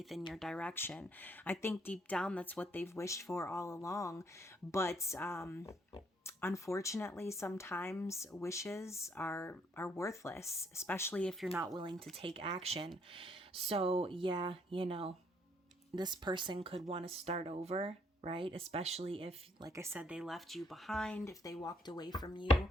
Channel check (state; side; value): normal; both; correlation 0.69